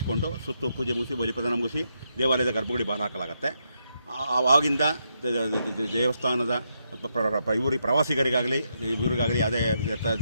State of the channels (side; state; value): both; inverted; correlation -0.81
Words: ಸುತ್ತು ಪೂಜೆ ಮುಗಿಸಿ ಬಲಿಪ್ರದಾನ ಮುಗಿಸಿ ದೇವಾಲಯದ ಗರ್ಭಗುಡಿ ಬಾಗಿಲು ಹಾಕಲಾಗುತ್ತೆ. ಆವಾಗಿಂದ ದೇವಸ್ಥಾನದ ಪ್ರವಾಸಿಗರಿಗಾಗಲಿ ಇವರಿಗಾಗಲಿ ಯಾವುದೇ